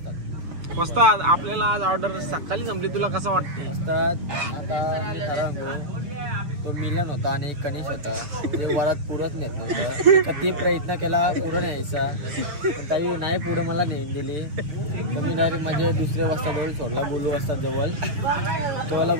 वस्ताद आपल्याला आज ऑर्डर सकाळी संपली तुला कसं वाटतं वस्ताद आता मी खरं सांगू तो मिलन होता आणि एक कनिश होता ते वरात पुरत नेत नव्हतं किती प्रयत्न केला पुढं न्यायचा पण ताई नाही पुढं मला नेऊन दिली तर मी डायरेक्ट माझ्या दुसऱ्या वाजताजवळ सोडला गोलू वाजता जवळ तेव्हाला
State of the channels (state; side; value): late; left; 6.6 ms